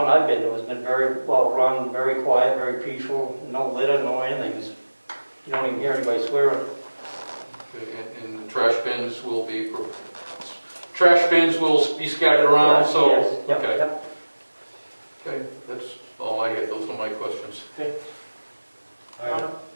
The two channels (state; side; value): inverted; both; correlation -1.00